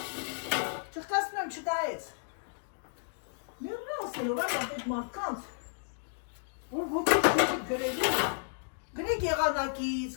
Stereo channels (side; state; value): right; silent; digital silence